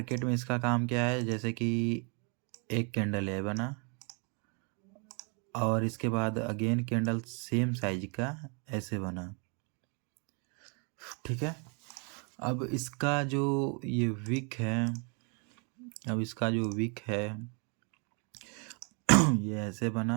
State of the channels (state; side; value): quieter; left; 35.9 dB